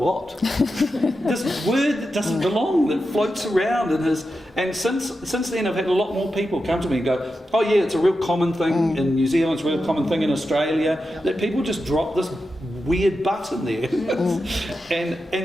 This word that doesn't belong, that floats around in his. And since then I've had a lot more people come to me and go, oh yeah, it's a real common thing in New Zealand, it's a real common thing in Australia, that people just drop this weird "but" in there.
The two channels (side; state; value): both; normal; correlation 0.89